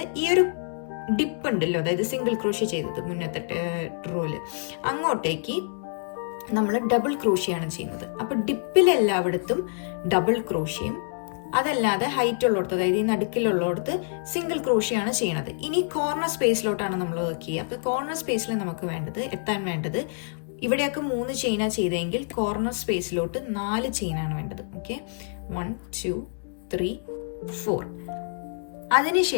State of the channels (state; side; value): silent; right; digital silence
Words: ഈ ഒരു ഡിപ്പ് ഉണ്ടല്ലോ, അതായത് സിംഗിൾ ക്രോഷ്യ ചെയ്തത് മുന്നത്തെ റോല്, അങ്ങോട്ടേക്ക് നമ്മൾ ഡബിൾ ക്രോഷ്യാണ് ചെയ്യുന്നത്. അപ്പോൾ ഡിപ്പിലെല്ലായിടത്തും ഡബിൾ ക്രോഷ്യം, അതല്ലാതെ ഹൈറ്റ് ഉള്ളിടത്ത്, അതായത് ഈ നടുക്കിലുള്ളിടത്ത് സിംഗിൾ ക്രോഷ്യാണ് ചെയ്യണത്. ഇനി കോർണർ സ്പേസിലോട്ടാണ് നമ്മൾ വർക്ക് ചെയ്യുക. അപ്പോൾ കോർണർ സ്പേസിൽ നമുക്ക് എത്താൻ വേണ്ടത് ഇവിടെയൊക്കെ 3 ചെയിനാണ് ചെയ്തെങ്കിൽ കോർണർ സ്പേസിലോട്ട് 4 ചെയിനാണ് വേണ്ടത്. ഓക്കെ, 1 2 3 4.